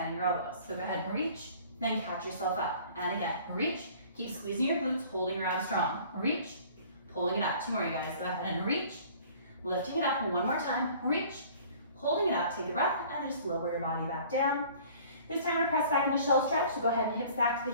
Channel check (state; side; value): inverted; both; correlation -0.50